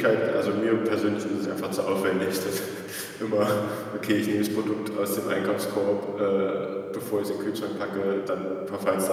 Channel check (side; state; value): both; identical; correlation 1.00